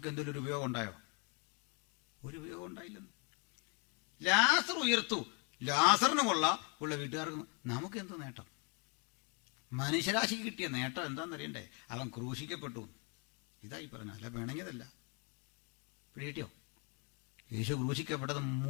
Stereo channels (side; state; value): right; quieter; 35.1 dB